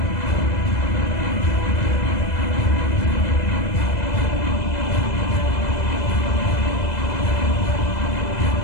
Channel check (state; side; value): late; right; 2.0 ms